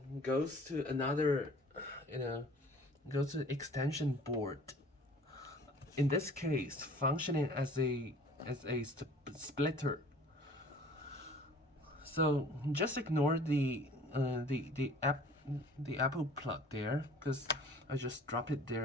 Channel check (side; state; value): both; normal; correlation 0.49